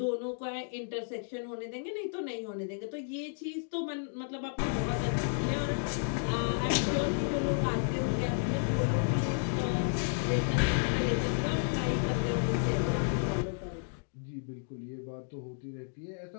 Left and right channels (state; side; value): silent; right; digital silence